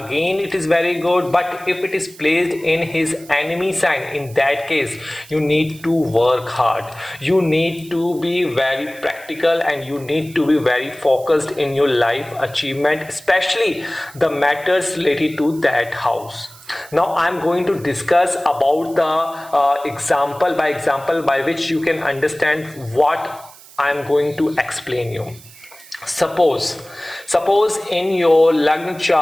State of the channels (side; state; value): right; noise; hiss, 21 dB below the sound